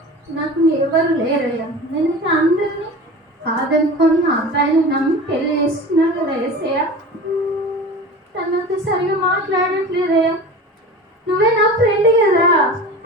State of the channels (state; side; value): normal; both; correlation 0.35